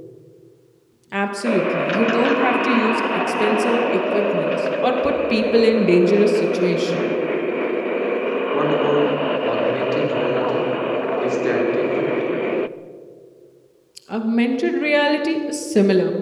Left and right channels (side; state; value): both; identical; correlation 1.00